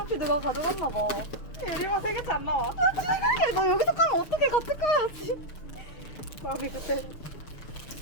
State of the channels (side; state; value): right; late; 6.6 ms